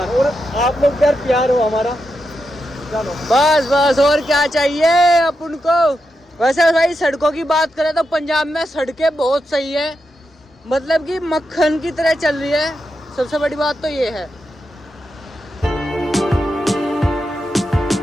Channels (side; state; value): both; normal; correlation 0.86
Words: और आप लोग यार प्यार हो हमारा। चलो बस बस, और क्या चाहिए अपन को। वैसे भाई सड़कों की बात करें तो पंजाब में सड़कें बहुत सही है, मतलब कि मक्खन की तरह चल रही है। सबसे बड़ी बात तो ये है।